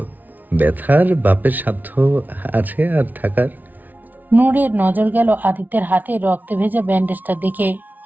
ব্যথার বাপের সাধ্য আছে আর থাকার? নূরের নজর গেল আদিত্যের হাতে রক্তে ভেজা ব্যান্ডেজটার দিকে।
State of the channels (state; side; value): late; left; 0.081 ms